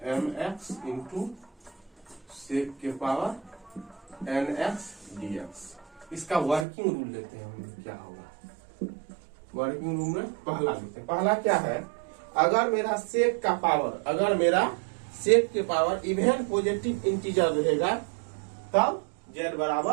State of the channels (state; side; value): drops out; left; at 6.7 s